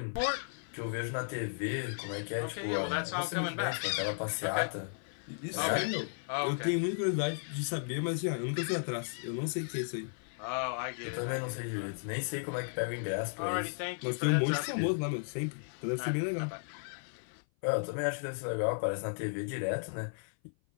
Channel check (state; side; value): silent; right; 55 dB below the other